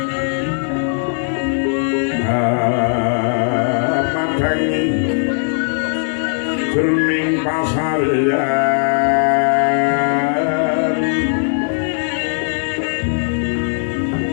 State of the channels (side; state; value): right; silent; digital silence